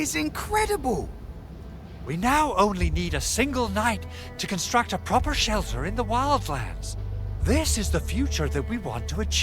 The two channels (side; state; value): both; identical; correlation 1.00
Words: incredible. We now only need a single night to construct a proper shelter in the wildlands. This is the future that we want to